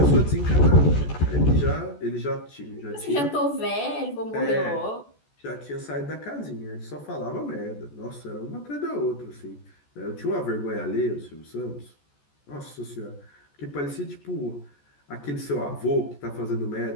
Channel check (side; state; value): right; late; 14 ms